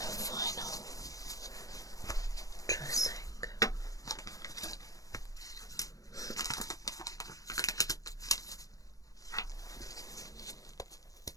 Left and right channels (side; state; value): right; late; 0.17 ms